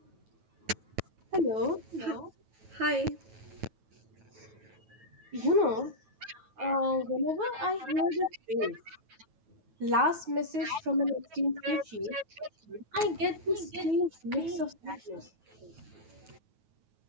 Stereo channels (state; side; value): late; left; 9.3 ms